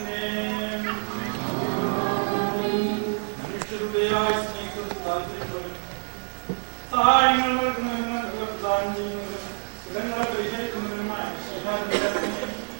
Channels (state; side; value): silent; left; 60 dB below the other